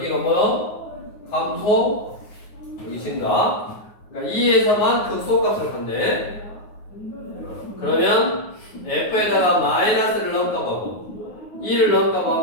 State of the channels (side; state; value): right; late; 9.5 ms